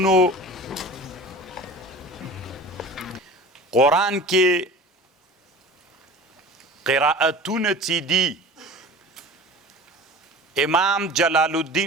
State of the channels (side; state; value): both; normal; correlation 0.38